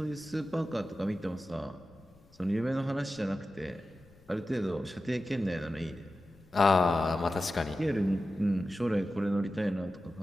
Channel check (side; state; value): left; noise; rumble, 28 dB below the sound